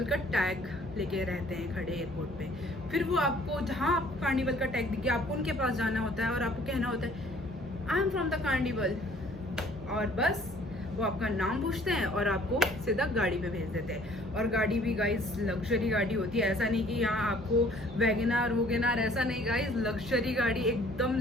का टैग लेके रहते हैं खड़े एयरपोर्ट पे। फिर वो आपको, जहाँ आप कार्निवल का टैग दिखे, आपको उनके पास जाना होता है और आपको कहना होता है I am from the carnival, और बस वो आपका नाम पूछते हैं और आपको सीधा गाड़ी पे भेज देते हैं। और गाड़ी भी गाइस लग्जरी गाड़ी होती है, ऐसा नहीं कि यहाँ आपको वैगनार वोगेनार, ऐसा नहीं गाइस, लग्जरी गाड़ी, एकदम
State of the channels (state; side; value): normal; both; correlation 0.57